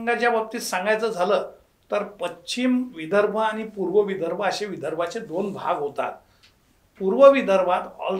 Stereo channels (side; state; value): both; identical; correlation 1.00